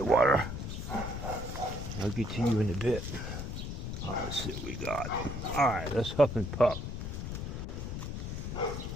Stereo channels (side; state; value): left; noise; rumble, 5 dB below the sound